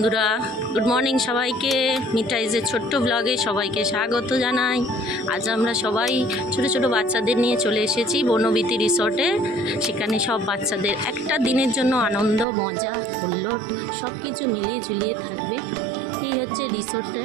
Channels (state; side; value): drops out; left; at 12.5 s